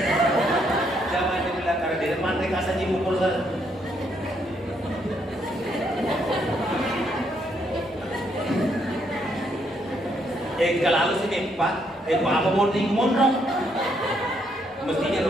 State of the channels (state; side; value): normal; both; correlation 0.73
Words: Jangan dibilang karena di depan mereka saja mukul saya. Kalau sini Pak, apa mau mondok? Mestinya